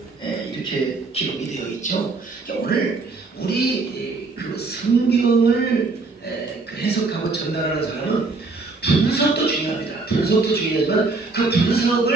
이렇게 기록이 되어 있죠. 그러니까 오늘 우리 그 성경을 그 해석하고 전달하는 사람은 분석도 중요합니다. 분석도 중요하지만 그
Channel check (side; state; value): left; quieter; 3.8 dB